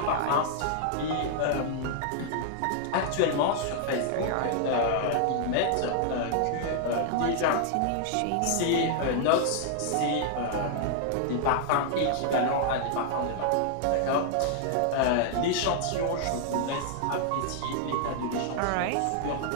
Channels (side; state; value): both; different; correlation -0.01